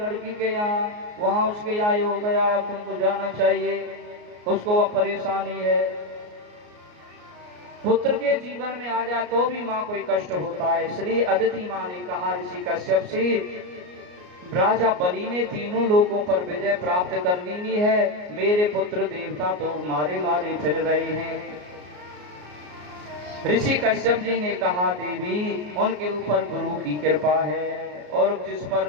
के यहाँ, वहां उसके यहाँ ये हो गया, अब तुमको जाना चाहिए, उसको वह परेशानी है। पुत्र के जीवन में आ जाए तो भी माँ कोई कष्ट होता है। इसलिए अदिति माँ ने कहा ऋषि कश्यप से, राजा बलि ने तीनों लोगों पर विजय प्राप्त कर ली है, मेरे पुत्र देवता तो मारे मारे फिर रहे हैं। ऋषि कश्यप जी ने कहा, देवी उनके ऊपर गुरु की कृपा है, और जिस पर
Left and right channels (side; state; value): left; late; 33 ms